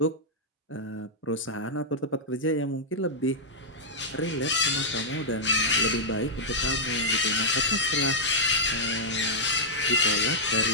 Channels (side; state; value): both; normal; correlation -0.08